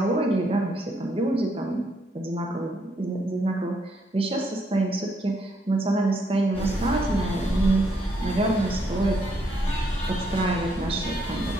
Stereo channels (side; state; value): both; normal; correlation 0.73